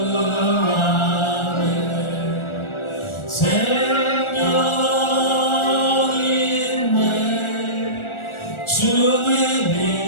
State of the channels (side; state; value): right; late; 1.4 ms